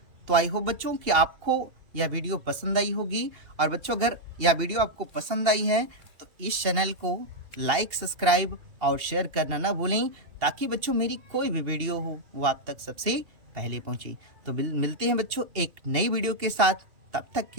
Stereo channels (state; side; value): late; left; 2.7 ms